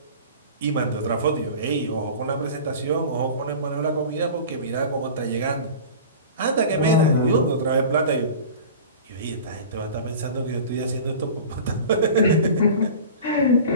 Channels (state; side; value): inverted; both; correlation -0.38